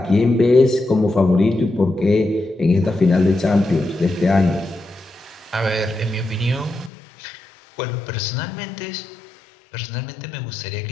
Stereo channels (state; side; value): drops out; right; at 6.9 s